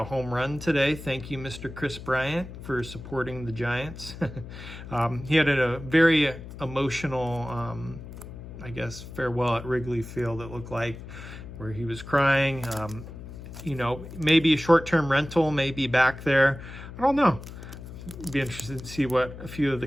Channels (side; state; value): left; noise; hum, 12 dB below the sound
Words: home run today. Thank you, Mr. Kris Bryant, for supporting the Giants. He had a very emotional, I guess, farewell at Wrigley Field, it looked like, where he was crying. Maybe a short-term rental, maybe back there. I don't know. Be interested to see what a few of the